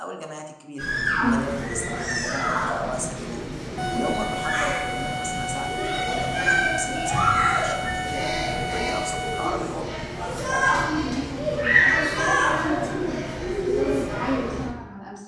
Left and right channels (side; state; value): both; identical; correlation 1.00